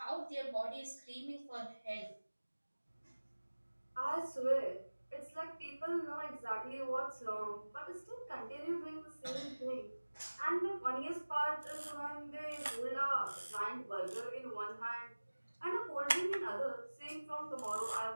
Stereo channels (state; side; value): inverted; both; correlation -1.00